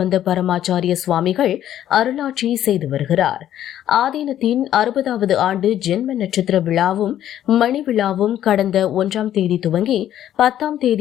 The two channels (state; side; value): quieter; right; 11.6 dB